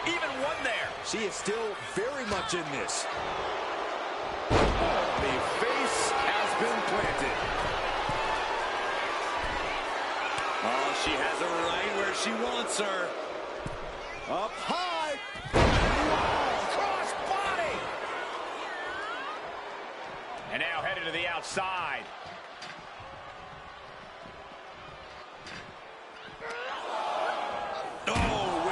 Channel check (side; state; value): both; identical; correlation 1.00